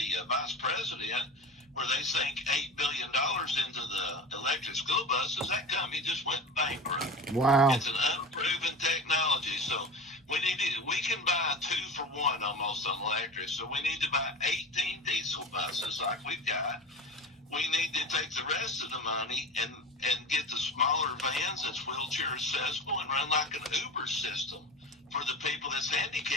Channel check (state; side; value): normal; both; correlation 0.32